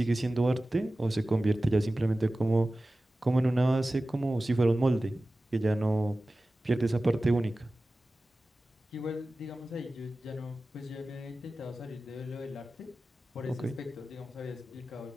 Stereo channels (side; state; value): both; normal; correlation 0.96